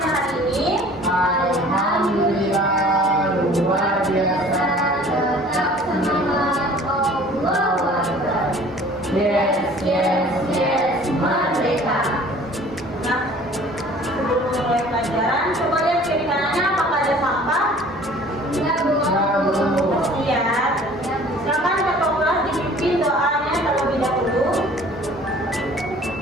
hari ini? Alhamdulillah, luar biasa. Tetap semangat, Allahu Akbar. Yes, merdeka. Nah, sebelum mulai pelajaran, coba lihat kiri kanannya apakah ada sampah? Ya, Bu. Lihat. Silakan kakak kelas dipimpin doanya terlebih dahulu.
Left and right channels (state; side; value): normal; both; correlation 0.49